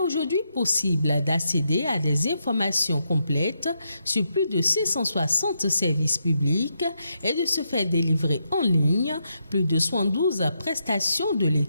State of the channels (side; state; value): both; inverted; correlation -0.82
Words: possible d'accéder à des informations complètes sur plus de 660 services publics et de se faire délivrer en ligne plus de 72 prestations de